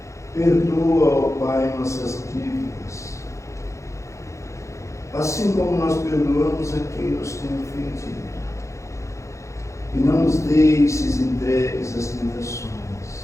Perdoa, ó Pai, nossas dívidas, assim como nós perdoamos a quem nos tem ofendido. E não nos deixes entregues às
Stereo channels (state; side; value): late; right; 0.15 ms